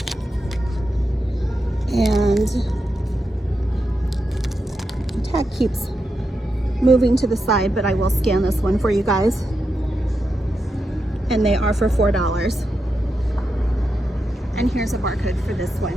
and the tag keeps moving to the side, but I will scan this one for you guys, and they are for $4. And here's a barcode for this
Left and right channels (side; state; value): both; normal; correlation 0.86